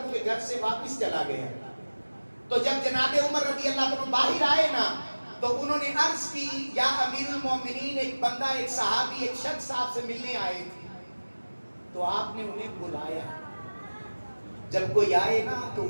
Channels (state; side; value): inverted; both; correlation -1.00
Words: کے گھر سے واپس چلا گیا. تو جب جناب عمر رضی اللہ عنہ باہر آئے نا تو انہوں نے عرض کی یا امیر المومنین، ایک بندہ، ایک صحابی، ایک شخص آپ سے ملنے آئے تھے. تو آپ نے انہیں بلایا. جب کوئی آئے نا تو